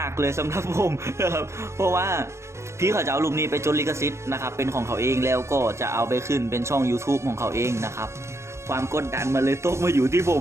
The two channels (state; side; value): late; left; 0.13 ms